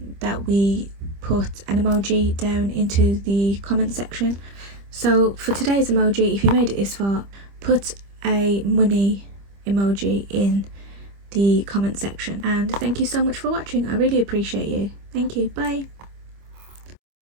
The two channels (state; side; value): late; left; 25 ms